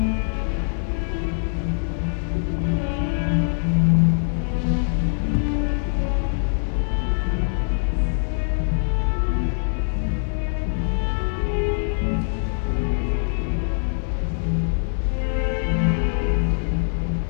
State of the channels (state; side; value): silent; right; digital silence